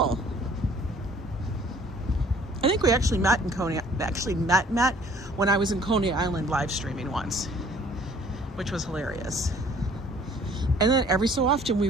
I think we actually met in Coney, met when I was in Coney Island live streaming once, which was hilarious. And then every so often we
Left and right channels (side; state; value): both; normal; correlation 0.55